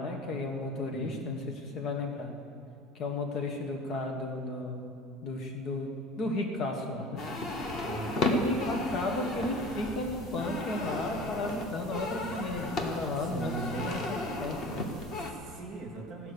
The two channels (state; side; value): normal; both; correlation 0.39